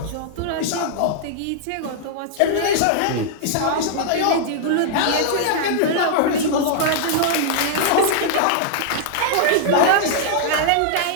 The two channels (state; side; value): different; both; correlation -0.01